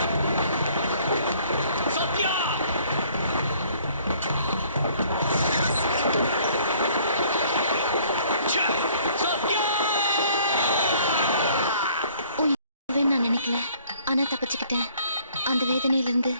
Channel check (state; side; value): inverted; both; correlation -0.59